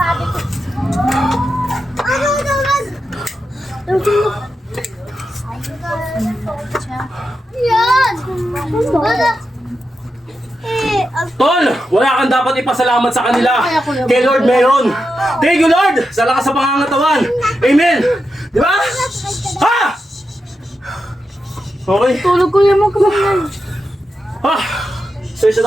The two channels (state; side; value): normal; both; correlation 0.88